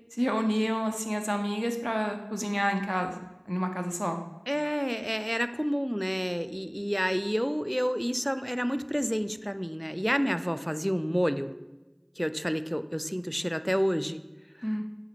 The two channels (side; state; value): both; identical; correlation 1.00